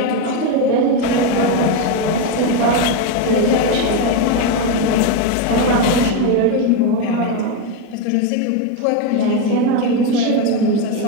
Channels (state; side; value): different; both; correlation 0.03